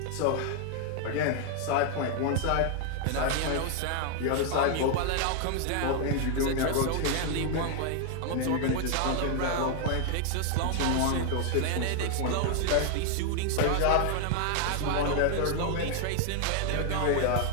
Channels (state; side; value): different; both; correlation 0.00